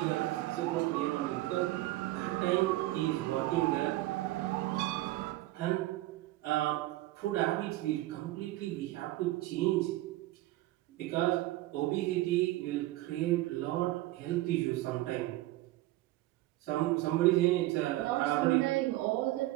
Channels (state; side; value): quieter; left; 17.5 dB